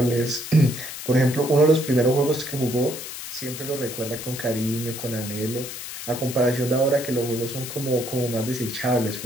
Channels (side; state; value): left; noise; hiss, 9 dB below the sound